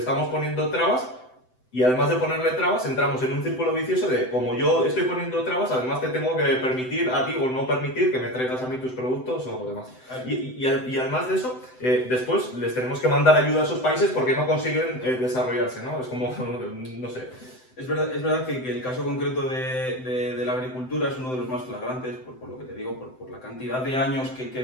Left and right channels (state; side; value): late; right; 7.8 ms